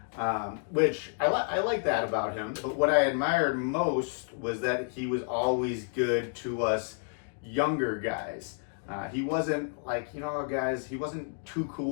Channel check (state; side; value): silent; right; 58 dB below the other